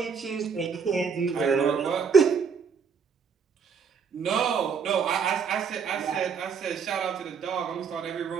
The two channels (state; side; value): quieter; left; 6.2 dB